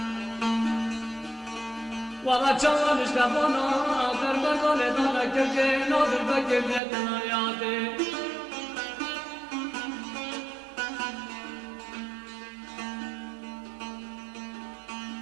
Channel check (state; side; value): drops out; left; at 6.8 s